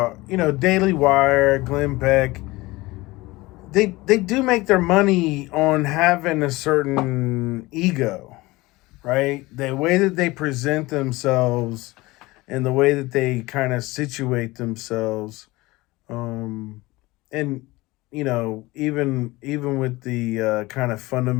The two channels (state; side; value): quieter; right; 20.8 dB